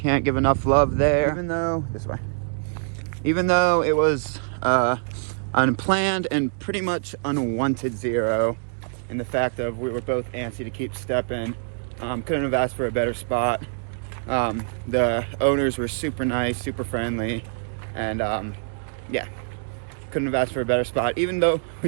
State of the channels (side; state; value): left; silent; digital silence